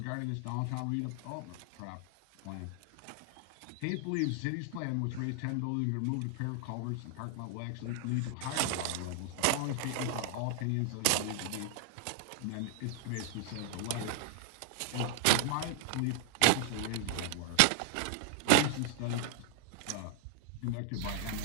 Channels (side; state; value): both; different; correlation 0.00